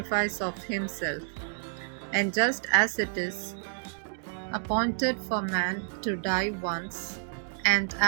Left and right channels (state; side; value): silent; left; digital silence